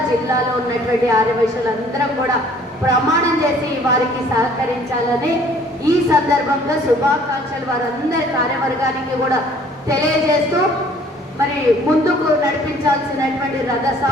జిల్లాలో ఉన్నటువంటి ఆర్యవైశ్యులందరం కూడా ప్రమాణం చేసి వారికి సహకరించాలని ఈ సందర్భంగా శుభాకాంక్షలు వారందరి కార్యవర్గానికి కూడా తెలియజేస్తూ, మరి ముందుకు నడిపించాల్సినటువంటి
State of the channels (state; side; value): normal; both; correlation 0.56